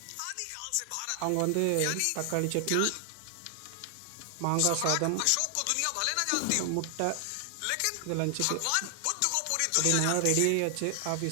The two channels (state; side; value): different; both; correlation 0.00